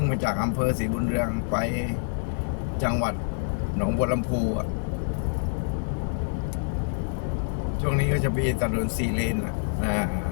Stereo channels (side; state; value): right; silent; digital silence